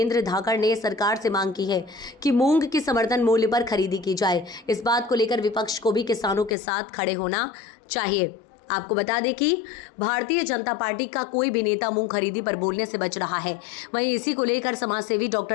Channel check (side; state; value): right; drops out; at 6.6 s